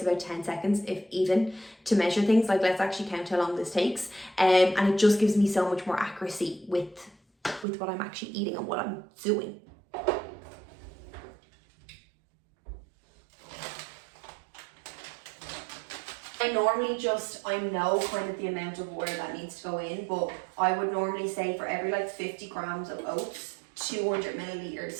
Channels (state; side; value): drops out; left; at 7.7 s